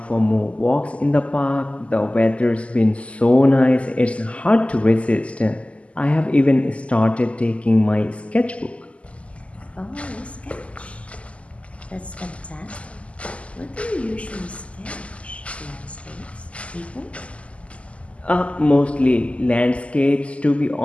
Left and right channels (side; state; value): right; late; 0.061 ms